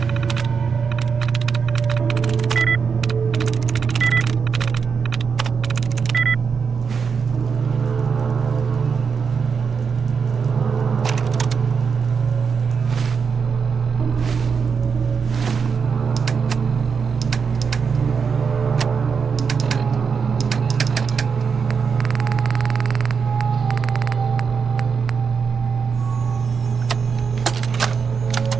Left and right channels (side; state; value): left; quieter; 5.9 dB